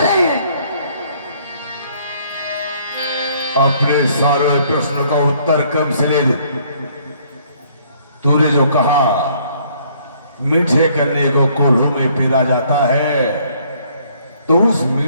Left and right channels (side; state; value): both; inverted; correlation -0.63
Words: रहे हैं? अपने सारे प्रश्न का उत्तर कम से ले दे। तूने जो कहा मीठे करने को कोल्हू में पीरा जाता है, तो उस